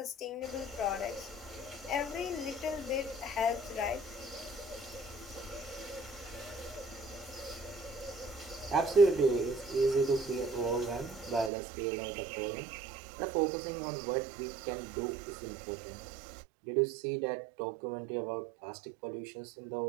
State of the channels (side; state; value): left; drops out; at 11.5 s